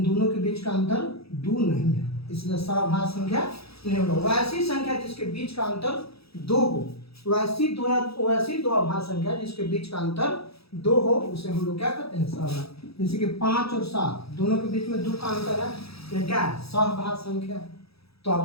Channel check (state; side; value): late; right; 0.77 ms